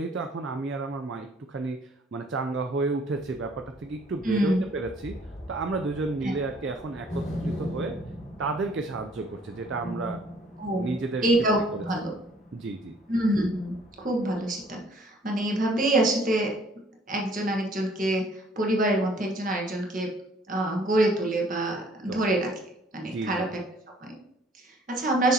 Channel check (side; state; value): both; normal; correlation 0.59